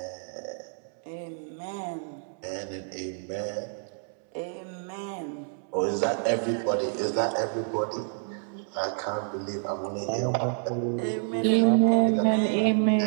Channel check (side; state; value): left; silent; 59 dB below the other